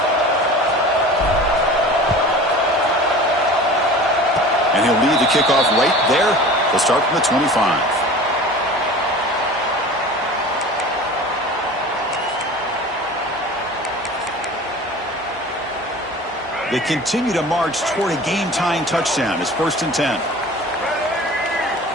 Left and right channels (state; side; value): normal; both; correlation 0.39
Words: kickoff right there. They'll start from the 25. They continue to march toward a game-tying touchdown. It's 1st and 10.